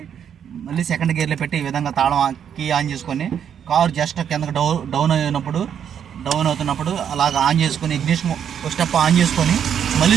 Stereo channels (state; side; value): quieter; left; 8.5 dB